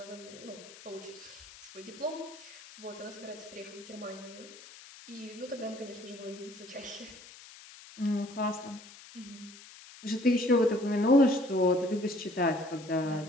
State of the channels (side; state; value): left; noise; hiss, 18 dB below the sound